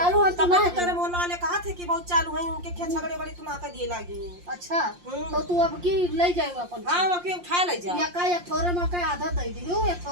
है तो तब ना तो तेरे मोहल्ला वाले कहा थे कि बहुत चालू है उनके खेत झगड़े बड़ी तू ना कर दिए लागी अच्छा तो तू अब की ले जाएगा अपन हां वो के उठा ले जा या का एक थोड़े में का आधा दे दियो एक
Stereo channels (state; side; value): late; left; 5.7 ms